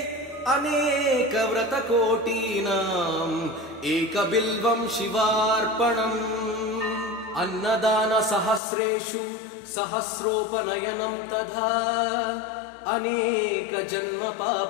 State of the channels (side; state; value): right; drops out; at 8.6 s